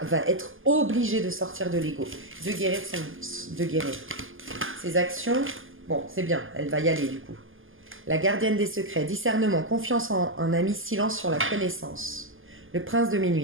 être obligé de sortir de l'ego, de guérir ses actions. Bon, c'est bien, elle va y aller du coup. La gardienne des secrets, discernement, confiance en un ami, silence sur la connaissance. Le prince de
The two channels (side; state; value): left; late; 0.59 ms